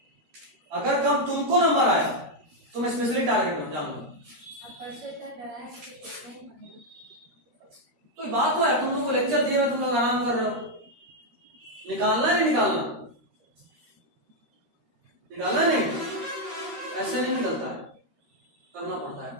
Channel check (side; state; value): left; late; 13 ms